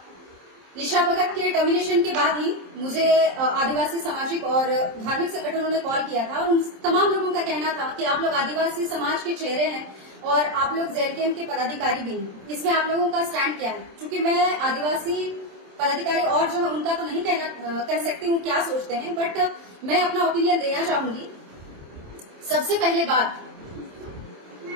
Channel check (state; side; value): late; left; 27 ms